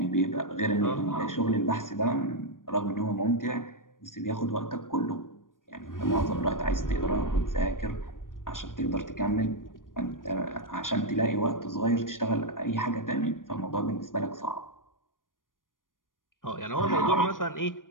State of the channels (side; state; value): right; late; 0.90 ms